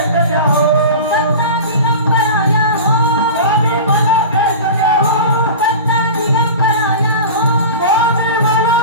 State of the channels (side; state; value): both; inverted; correlation -0.32